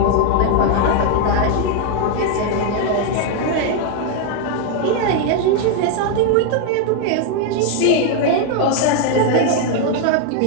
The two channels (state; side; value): different; both; correlation 0.00